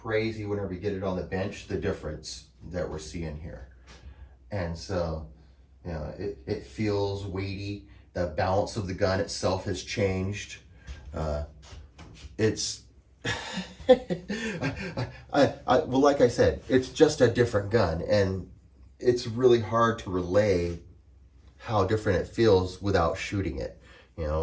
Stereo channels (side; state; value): both; identical; correlation 1.00